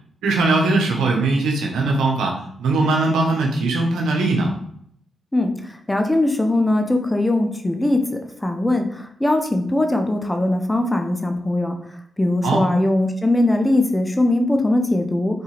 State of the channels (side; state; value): both; normal; correlation 0.86